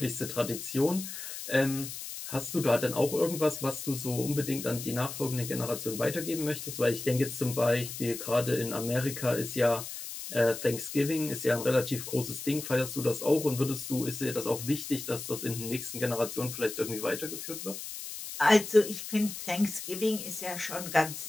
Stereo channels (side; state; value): left; noise; hiss, 8 dB below the sound